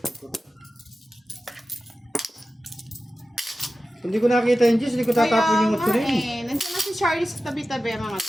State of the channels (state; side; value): normal; both; correlation 0.94